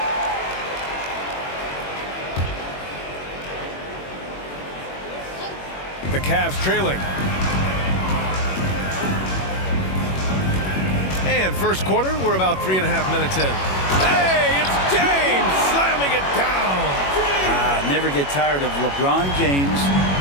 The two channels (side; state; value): right; late; 21 ms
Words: The Cavs trailing. And first quarter, we're about 3.5 minutes in. Hey, it's James slamming it down. Never get tired of LeBron James